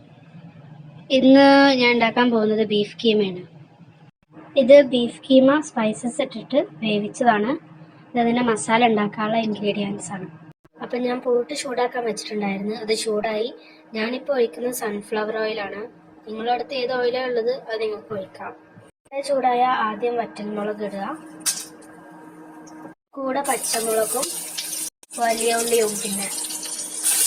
ഇന്ന് ഞാൻ ഉണ്ടാക്കാൻ പോകുന്നത് ബീഫ് കീമയാണ്. ഇത് ബീഫ് കീമ സ്പൈസസ് ഇട്ടിട്ട് വേവിച്ചതാണ്. ഇതിൻ്റെ മസാല ഉണ്ടാക്കാനുള്ള ഇൻഗ്രീഡിയൻസ് ആണ്. അപ്പം ഞാൻ പോട്ട് ചൂടാക്കാൻ വെച്ചിട്ടുണ്ടായിരുന്നു. അത് ചൂടായി. ഞാനിപ്പോൾ ഒഴിക്കുന്നത് സൺഫ്ലവർ ഓയിലാണ്. നിങ്ങളുടെ അടുത്ത് ഏത് ഓയിലാണ് ഉള്ളത് അത് നിങ്ങൾക്ക് ഒഴിക്കാം. ചൂടായ ആദ്യം വറ്റൽമുളക് ഇടുക, കൂടെ പച്ചമുളകും വലിയ ഉള്ളിയും പിന്നെ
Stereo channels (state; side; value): identical; both; correlation 1.00